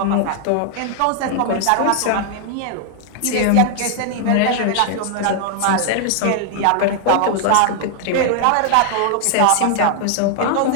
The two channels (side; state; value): both; different; correlation 0.00